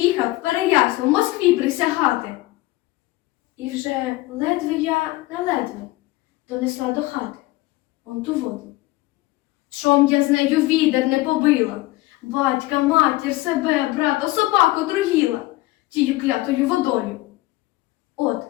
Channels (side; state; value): right; quieter; 19.0 dB